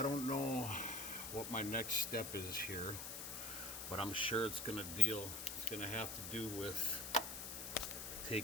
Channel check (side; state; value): left; noise; hiss, 6 dB below the sound